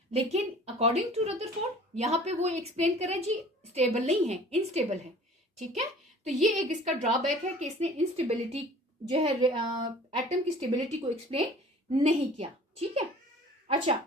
लेकिन अकॉर्डिंग टू रदरफोर्ड यहाँ पे वो एक्सप्लेन कर रहे हैं जी स्टेबल नहीं है, इनस्टेबल है, ठीक है। तो ये एक इसका ड्रॉबैक है कि इसने इंस्टेबिलिटी जो है एटम की स्टेबिलिटी को एक्सप्लेन नहीं किया, ठीक है। अच्छा,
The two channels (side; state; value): both; normal; correlation 0.47